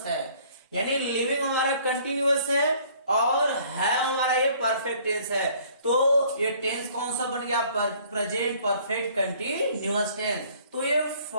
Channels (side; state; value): both; inverted; correlation -0.57